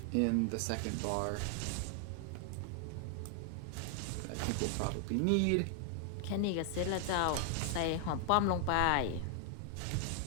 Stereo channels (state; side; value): different; both; correlation 0.00